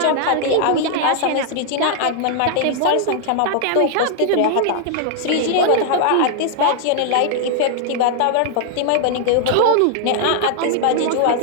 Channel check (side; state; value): both; different; correlation 0.00